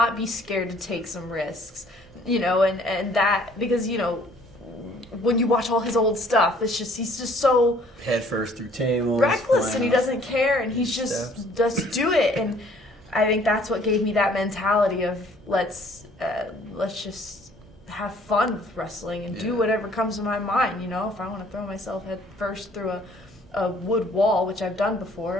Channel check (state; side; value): normal; both; correlation 0.58